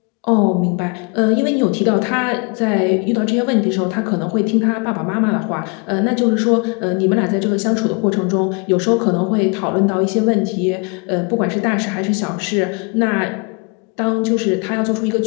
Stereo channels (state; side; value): quieter; right; 32.8 dB